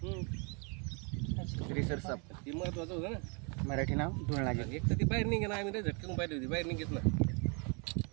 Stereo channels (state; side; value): quieter; left; 34.7 dB